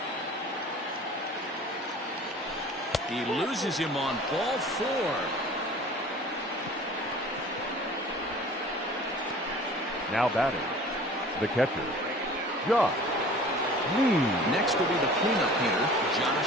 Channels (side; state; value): both; normal; correlation 0.45